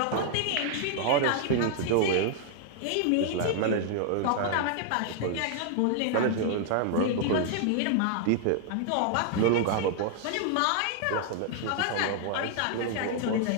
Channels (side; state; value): both; different; correlation 0.00